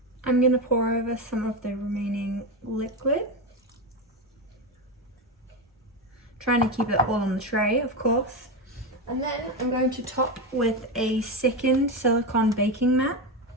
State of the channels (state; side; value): normal; both; correlation 0.15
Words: I'm going to pour over some of the remaining liquid. Trying to keep it all on the tray, of course. And then I'm going to top with a second silicone baking mat